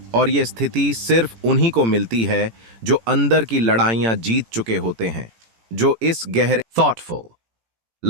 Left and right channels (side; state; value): left; late; 18 ms